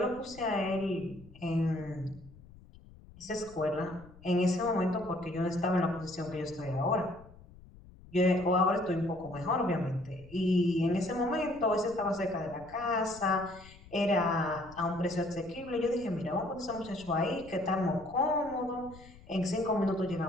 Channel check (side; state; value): left; noise; rumble, 21 dB below the sound